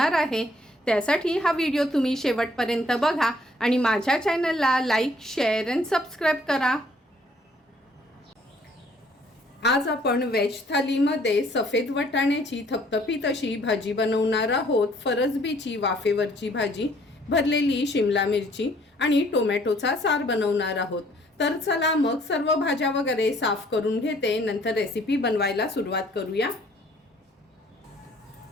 आहे। त्यासाठी हा व्हिडिओ तुम्ही शेवटपर्यंत बघा आणि माझ्या चॅनलला लाईक, शेअर आणि सबस्क्राइब करा। आज आपण व्हेज थालीमध्ये सफेद वाटाण्याची थपथपीत अशी भाजी बनवणार आहोत। फरसबीची वाफेवरची भाजी, भरलेली शिमला मिरची आणि टोमॅटोचा सार बनवणार आहोत। तर चला मग सर्व भाज्या वगैरे साफ करून घेते, नंतर रेसिपी बनवायला सुरुवात करूया।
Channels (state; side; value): normal; both; correlation 0.61